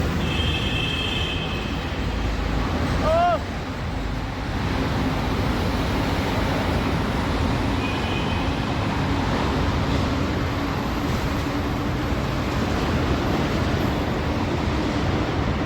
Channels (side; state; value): both; identical; correlation 1.00